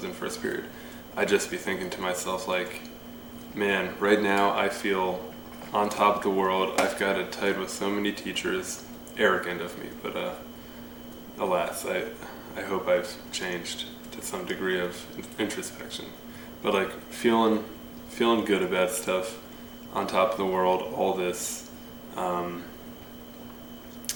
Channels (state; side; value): noise; right; rumble, 20 dB below the sound